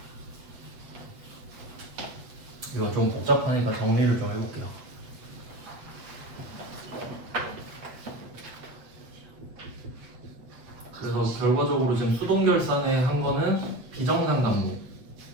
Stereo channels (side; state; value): left; late; 7.9 ms